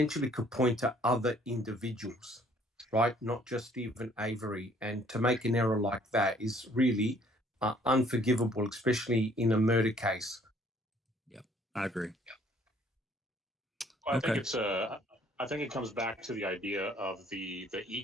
could point to other individuals, right? Not just even Avery. And to make an error like that is really unforgivable, especially in a murder case. I agree. Well, I think it comes back to the idea of the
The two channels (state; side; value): normal; both; correlation 0.60